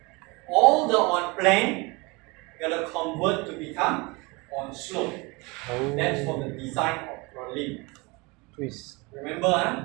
all the on plane, you're going to convert to become on slope. oh. That's for the design of purlin. Twist. Remember, huh?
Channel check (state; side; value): quieter; left; 26.3 dB